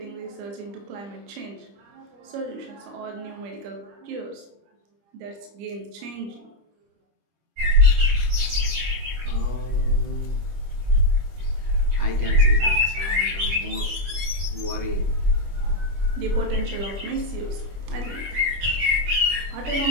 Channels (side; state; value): left; late; 25 ms